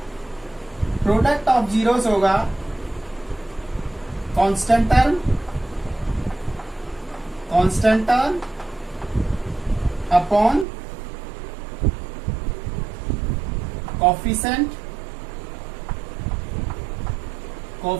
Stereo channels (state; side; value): drops out; left; at 10.7 s